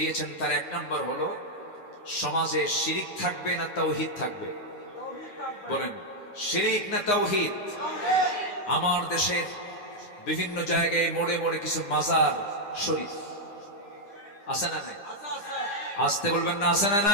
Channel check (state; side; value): late; right; 9.8 ms